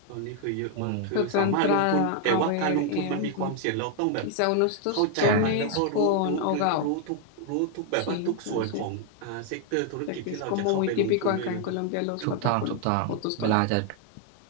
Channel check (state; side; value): different; both; correlation 0.00